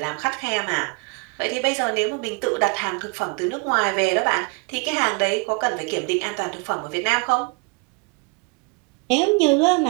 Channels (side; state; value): left; quieter; 31.9 dB